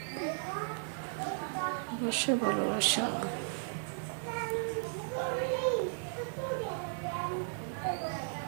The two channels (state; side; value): silent; left; 54 dB below the other